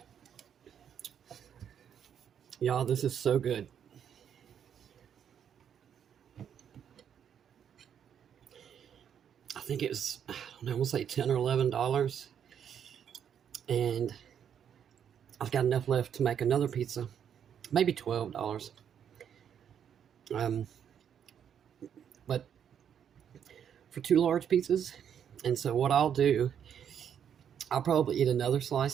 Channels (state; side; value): quieter; left; 8.6 dB